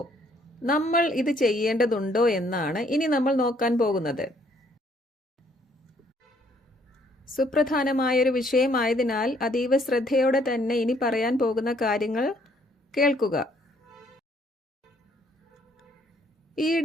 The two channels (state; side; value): normal; both; correlation 0.65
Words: നമ്മൾ ഇത് ചെയ്യേണ്ടതുണ്ടോ എന്നാണ് ഇനി നമ്മൾ നോക്കാൻ പോകുന്നത്. സുപ്രധാനമായൊരു വിഷയമായതിനാൽ അതീവ ശ്രദ്ധയോടെ തന്നെ ഇനി പറയാൻ പോകുന്ന കാര്യങ്ങൾ കേൾക്കുക.